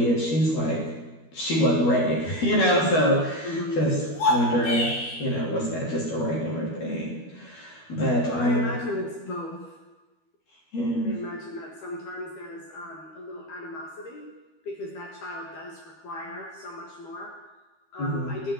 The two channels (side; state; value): right; late; 12 ms